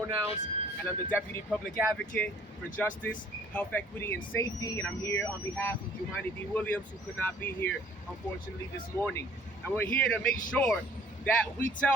and I'm the Deputy Public Advocate for Justice, Health, Equity, and Safety, and I'm here on behalf of Jumani D. Williams, who could not be here, unfortunately, this morning. And we're here to make sure that we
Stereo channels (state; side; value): normal; both; correlation 0.56